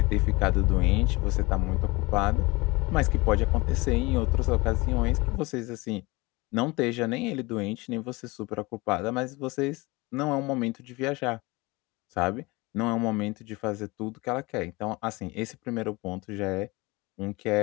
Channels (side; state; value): right; quieter; 23.8 dB